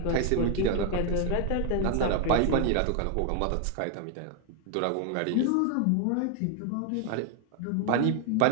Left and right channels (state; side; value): different; both; correlation 0.01